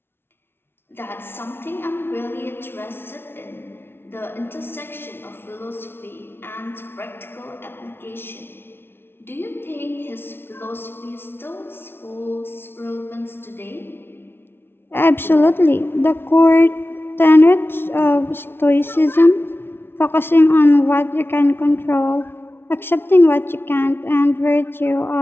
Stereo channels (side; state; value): right; late; 0.11 ms